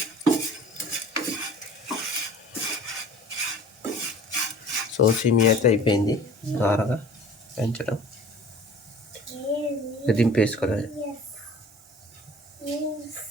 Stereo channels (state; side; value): normal; both; correlation 0.46